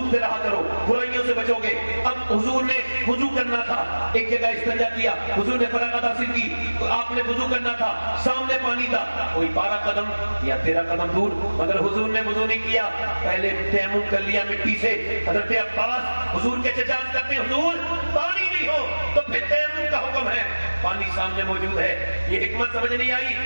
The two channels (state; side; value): inverted; both; correlation -1.00